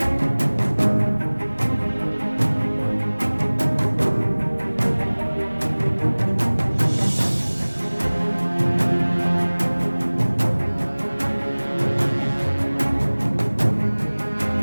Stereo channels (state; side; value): inverted; both; correlation -1.00